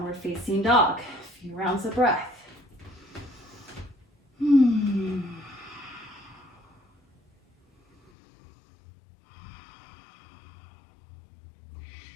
facing dog. A few rounds of breath.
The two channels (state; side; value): drops out; right; at 8.1 s